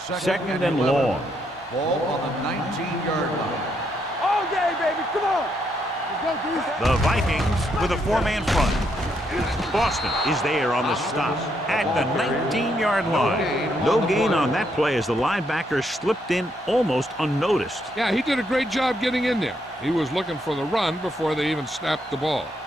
Second and long. Ball on the 19-yard line. All day, baby. Come on. Let's go, D. The Vikings with a 4-man front. Boston is there on the stop at the 19-yard line. No gain on that play as the linebacker slipped in almost unnoticed. Yeah, he did a great job getting in there. He was looking for the run before they even snapped the ball.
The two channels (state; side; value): normal; both; correlation 0.76